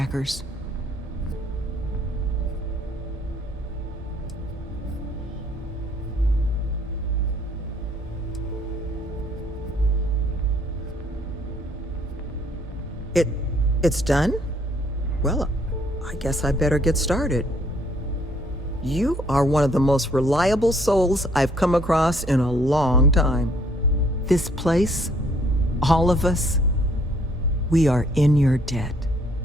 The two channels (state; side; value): normal; both; correlation 0.64